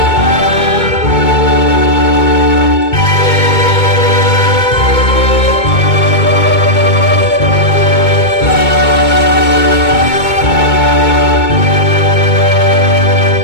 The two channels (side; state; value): right; late; 2.2 ms